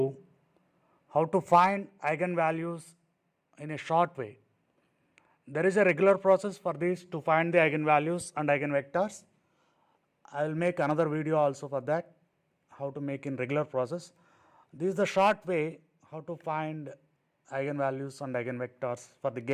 how to find eigenvalues in a short way. There is a regular process for this to find the eigenvalues and eigenvectors. I will make another video also for that, how to make in regular process. This is the short way how to find eigenvalues and eigenvectors for the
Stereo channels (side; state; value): both; identical; correlation 1.00